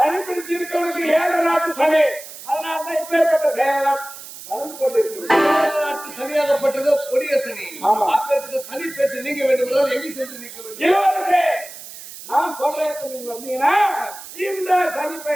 பிடிச்சிருக்கவனுக்கு 7 நாட்டு சனி. அதனால்தான் இப்பேற்பட்ட செயலம் நடந்து கொண்டிருக்கிறது. சனியாகப்பட்டதோ கொடிய சனி. அப்பேற்பட்ட சனி பேச்சு நீங்க வேண்டும் என்றால் எங்கே சென்று நீக்க வேண்டும்? இளவரசே, நான் சொல்றேன், நீங்க வந்தீங்கன்னா இந்த சனி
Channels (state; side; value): noise; right; hiss, 14 dB below the sound